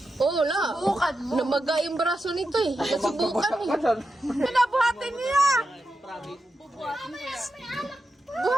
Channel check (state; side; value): normal; both; correlation 0.89